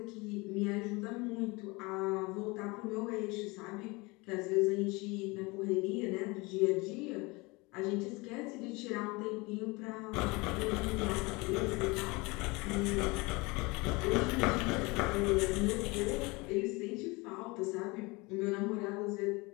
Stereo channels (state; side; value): quieter; right; 25.3 dB